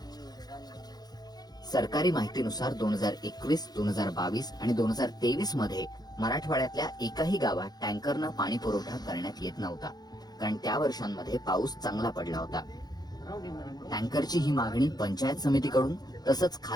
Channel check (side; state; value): right; late; 0.19 ms